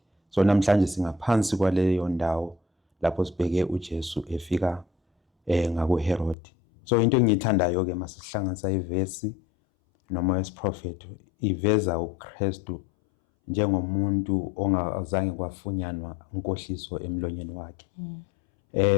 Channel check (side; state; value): right; drops out; at 6.4 s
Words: So namhlanje singaphansi kwaleyo ndawo lapho sibheke uJesu efika ngakuHerod. So into engiyithandayo ke masihlanganisa ivesi noma wesiprofethi, iveza uKristu njengomuntu ongazange kwafunyanwa inkohliso emlonyeni wakhe.